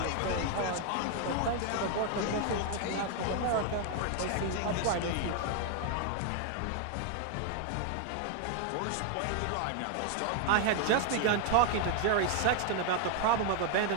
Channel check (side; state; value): both; different; correlation 0.00